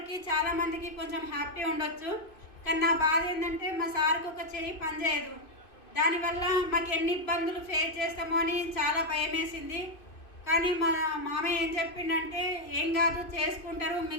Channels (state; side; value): late; right; 2.5 ms